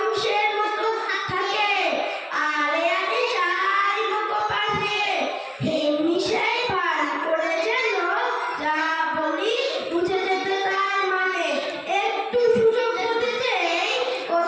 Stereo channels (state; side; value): identical; both; correlation 1.00